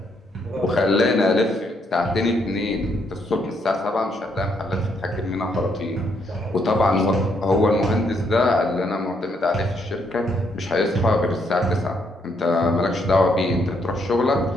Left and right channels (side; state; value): both; normal; correlation 0.74